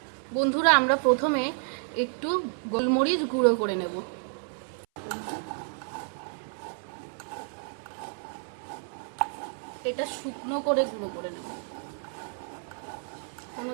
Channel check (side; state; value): left; silent; 56 dB below the other